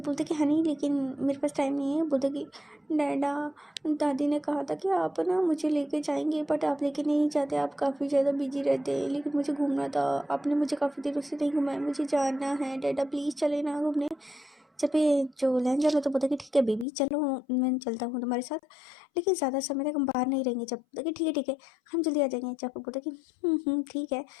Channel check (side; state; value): right; drops out; at 16.9 s